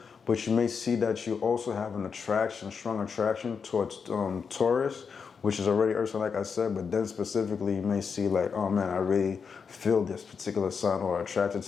but you may see that you also have an attraction, strong attraction towards Taurus, which is already Earth sign, like I said, but then specifically you may see like, oh man, I really feel this particular sign or attracted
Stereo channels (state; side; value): quieter; right; 5.9 dB